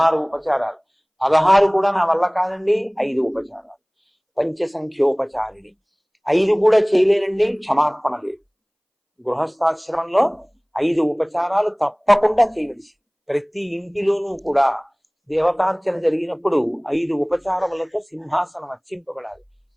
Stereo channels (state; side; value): identical; both; correlation 1.00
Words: ఉపచారాలు, 16 కూడా నా వల్ల కాదండి 5 ఉపచారాలు, పంచసంఖ్యోపచారిణి 5 కూడా చేయలేనండి క్షమార్పణ లేదు. గృహస్థాశ్రమంలో 5 ఉపచారాలు తప్పకుండా చేయవలసి. ప్రతి ఇంటిలోనూ కూడా దేవతార్చన జరిగినప్పుడు 5 ఉపచారములతో సింహాసనం అర్చింపబడాలి.